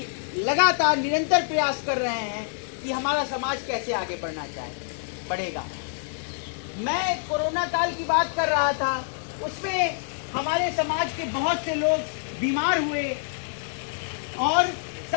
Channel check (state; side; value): silent; right; digital silence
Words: लगातार निरंतर प्रयास कर रहे हैं कि हमारा समाज कैसे आगे बढ़ेगा। मैं कोरोना काल की बात कर रहा था, उसमें हमारे समाज के बहुत से लोग बीमार हुए और